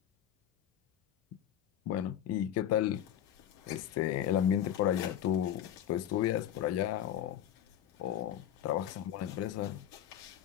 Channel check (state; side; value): quieter; right; 10.7 dB